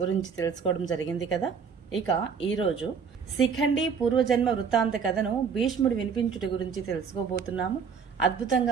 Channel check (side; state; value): left; quieter; 6.2 dB